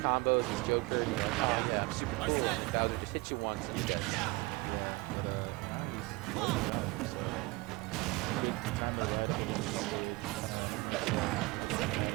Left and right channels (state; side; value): quieter; left; 23.7 dB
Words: combos, Joker, yeah, super cool. Bowser just hit you once and you get it.